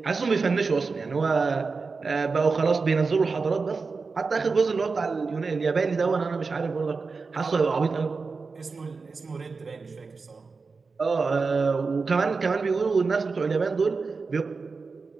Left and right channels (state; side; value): quieter; left; 4.5 dB